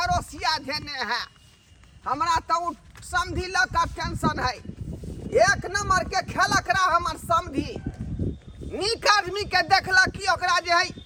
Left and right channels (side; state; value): both; identical; correlation 1.00